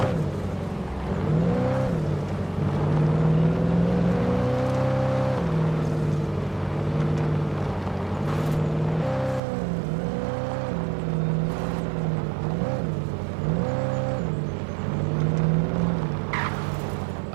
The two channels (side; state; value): left; drops out; at 9.4 s